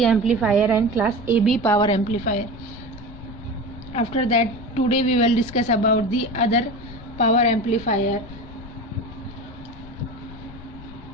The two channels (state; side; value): noise; left; rumble, 16 dB below the sound